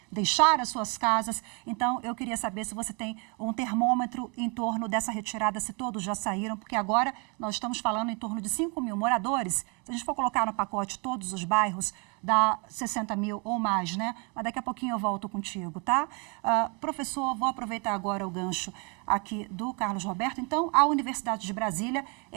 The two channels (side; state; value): left; quieter; 33.0 dB